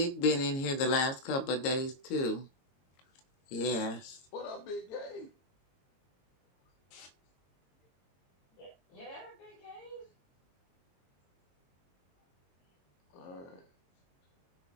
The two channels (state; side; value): late; right; 22 ms